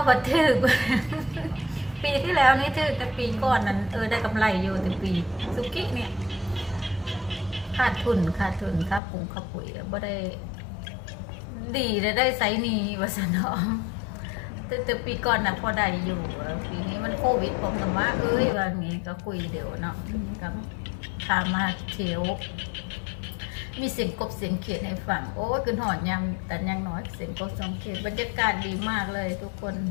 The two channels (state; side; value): drops out; right; at 9.0 s